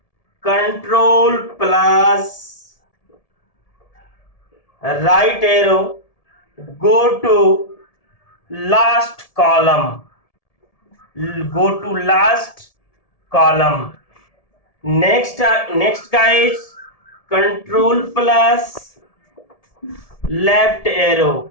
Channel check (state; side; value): late; right; 1.7 ms